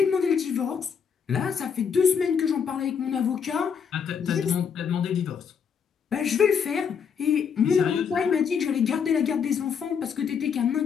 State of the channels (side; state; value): right; quieter; 6.8 dB